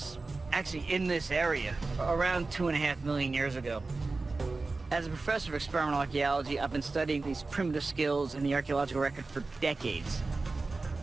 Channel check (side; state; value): left; quieter; 3.7 dB